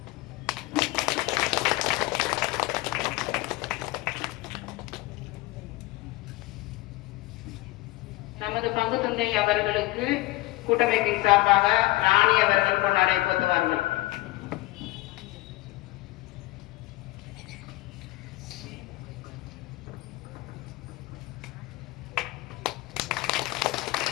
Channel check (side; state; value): right; quieter; 19.5 dB